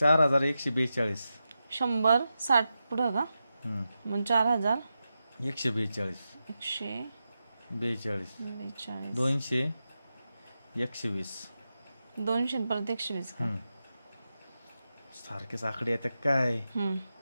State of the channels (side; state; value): both; inverted; correlation -0.90